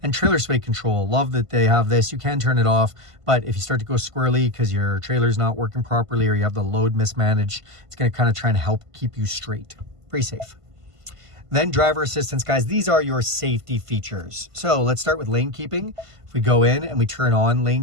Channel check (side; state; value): left; late; 1.5 ms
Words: And trailer sway control. Love that they have this. You can turn it off, but if you start to go squirrely because your trailer's not working properly or you have the load mismanaged, it's going to kind of try and help keep you straight. Pretty safe. Then driver assistance, guys. These are your safety features. So let's start with lane keeping. If we go in and we turn on